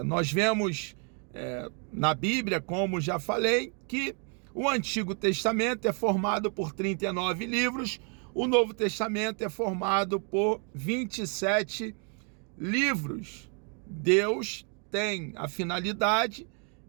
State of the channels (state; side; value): quieter; left; 38.7 dB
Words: Nós vemos na Bíblia, como já falei, que O Antigo Testamento é formado por 39 livros, o Novo Testamento é formado por 27 livros. Deus tem a finalidade